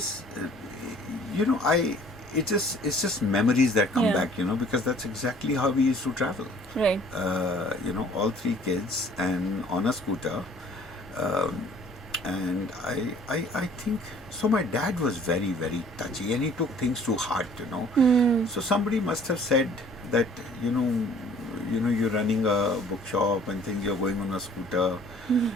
you know, it's just memories that come back, you know, because that's exactly how we used to travel. Right. You know, all three kids and on a scooter. And I think, so my dad was very, very touchy, and he took things to heart, you know. So somebody must have said that, you know, you're running a bookshop and things, you're going on a scooter.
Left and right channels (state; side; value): normal; both; correlation 0.54